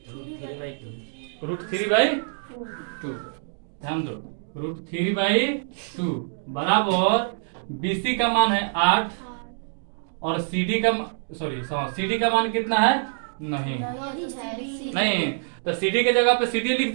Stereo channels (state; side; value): silent; left; digital silence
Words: √3/2। ध्यान दो, √3/2 बराबर BC का मान है 8 और CD का मान कितना है? नहीं, तो CD के जगह पे CD लिख